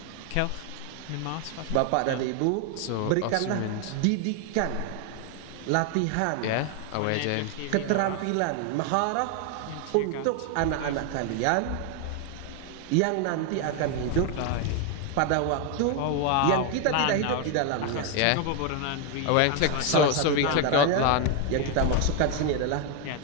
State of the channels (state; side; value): different; both; correlation 0.01